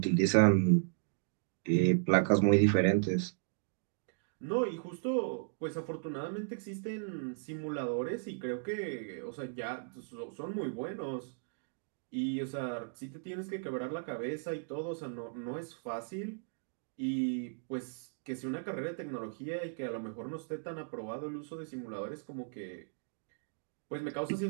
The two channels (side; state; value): left; silent; digital silence